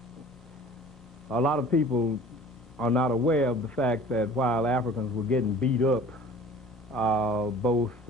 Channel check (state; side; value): normal; both; correlation 0.45